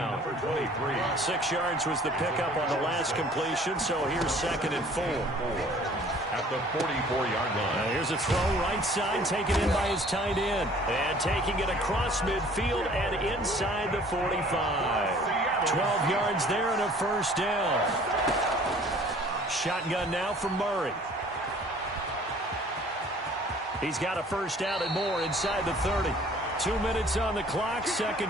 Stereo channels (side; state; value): both; normal; correlation 0.53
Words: 6 yards was the pickup on the last completion, so here's 2nd and 4. At the 44-yard line. Here's a throw right side, taken in by his tight end. And taking it across midfield and inside the 45. 12 yards there and a 1st down. Shotgun now for Murray. He's got a 1st down and more inside the 30. 2 minutes on the clock,